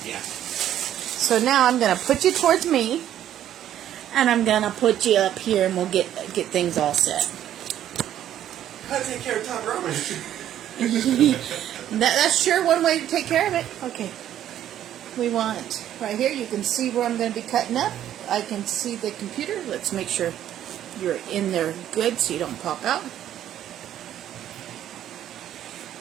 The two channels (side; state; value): left; quieter; 11.3 dB